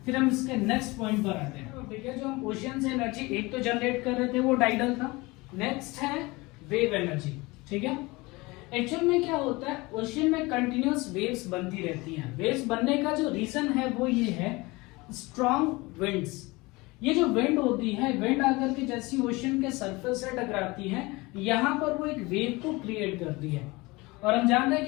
फिर हम इसके नेक्स्ट पॉइंट पर आते हैं। ठीक है, जो हम ओशियन से एनर्जी एक तो जनरेट कर रहे थे वो टाइडल था। नेक्स्ट है वेव एनर्जी, ठीक है। एक्चुअल में क्या होता है, ओशियन में कंटिन्यूअस वेव्स बनती रहती हैं। वेव्स बनने का जो रीजन है वो ये है स्ट्रॉन्ग विंड्स। ये जो विंड होती है, विंड आकर के जैसी ओशियन के सरफेस से टकराती है, यहाँ पर वो एक वेव को क्रिएट करती है। और हम जानते हैं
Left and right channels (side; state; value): right; quieter; 23.2 dB